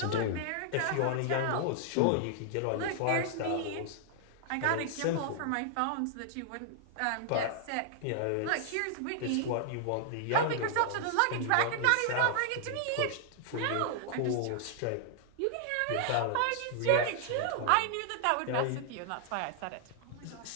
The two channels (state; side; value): different; both; correlation -0.01